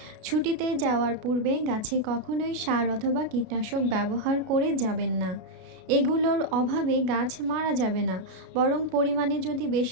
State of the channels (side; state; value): left; late; 33 ms